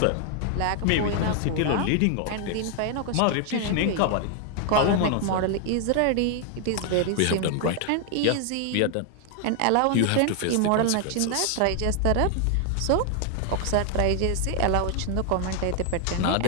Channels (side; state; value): both; different; correlation 0.00